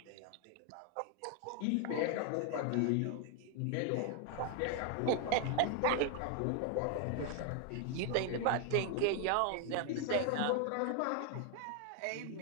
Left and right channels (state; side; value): different; both; correlation 0.00